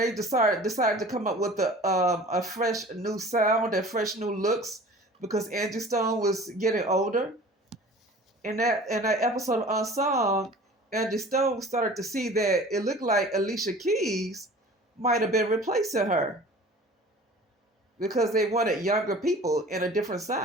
decided to come up with a fresh new sound and fresh new looks because Angie Stone was getting older. In that episode of Unsung, Angie Stone started to see that it looked like Alicia Keys might have been replacing her because they wanted younger people in a different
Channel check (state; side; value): normal; both; correlation 0.44